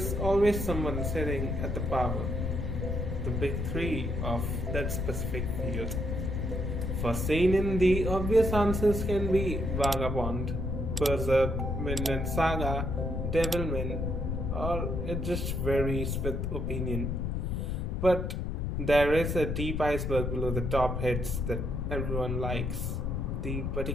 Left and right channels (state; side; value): noise; left; rumble, 1 dB below the sound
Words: always someone sitting at the power, the big three of that specific field. For seinen, the obvious answers can be Vagabond, Berserk, Vinland Saga, Devilman, or it just varies with opinion. But there is a deep iceberg below the top hits that everyone likes. The